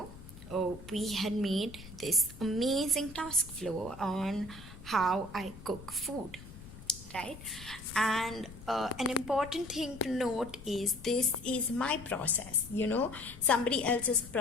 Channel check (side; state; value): left; noise; rumble, 16 dB below the sound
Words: we had made this amazing task flow on how I cook food, right? And an important thing to note is this is my process. Somebody else's